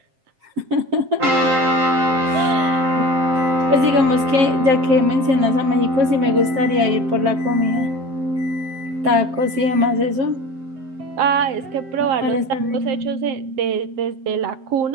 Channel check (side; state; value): left; late; 7.6 ms